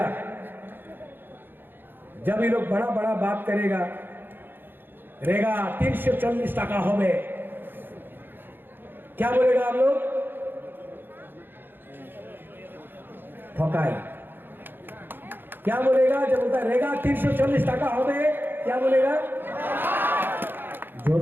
जब ये लोग बड़ा बड़ा बात करेगा, रेगा 340 टाका हो गए, क्या बोलेगा आप लोग? ठोकाई। क्या बोलेगा जब बोलता है रेगा 340 टाका हो गए, क्या बोलेगा? जोर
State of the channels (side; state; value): left; late; 0.097 ms